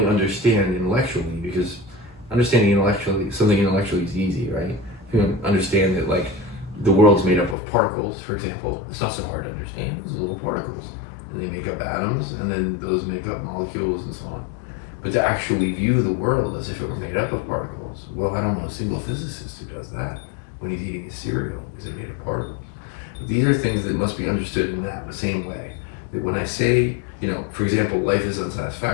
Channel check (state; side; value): drops out; right; at 7.6 s